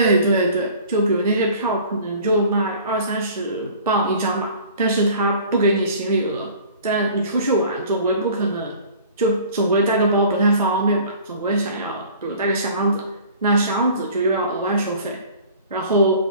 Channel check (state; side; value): inverted; both; correlation -0.47